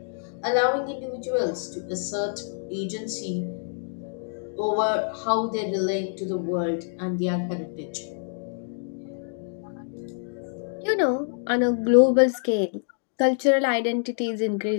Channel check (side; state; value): right; silent; digital silence